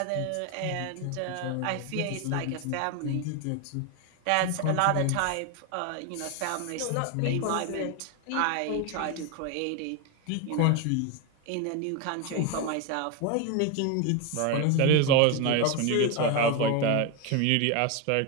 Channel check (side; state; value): both; different; correlation 0.02